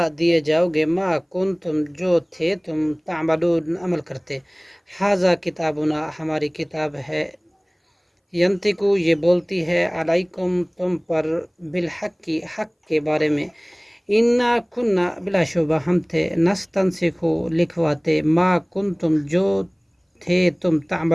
دیے جاؤ گے ما کنتم جو تھے تم تعملون عمل کرتے، ھذا کتابنا ہماری کتاب ہے، ینطقو یہ بولتی ہے، علیکم تم پر بالحق حق کے بارے میں، انا کننا بلا شبہ ہم تھے، نستنسخ لکھواتے، ما کنتم جو تھے تم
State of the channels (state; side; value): identical; both; correlation 1.00